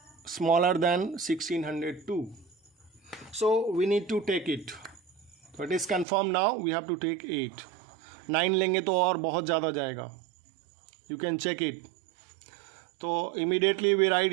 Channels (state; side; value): drops out; left; at 6.1 s